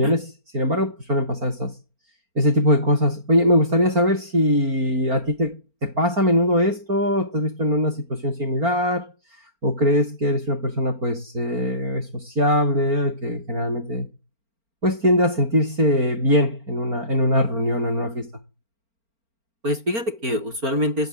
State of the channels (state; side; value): late; left; 4.4 ms